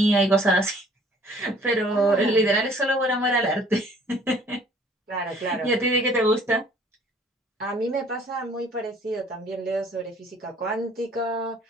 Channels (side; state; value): both; normal; correlation 0.56